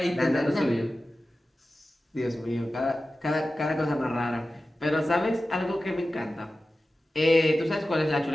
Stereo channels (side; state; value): both; normal; correlation 0.94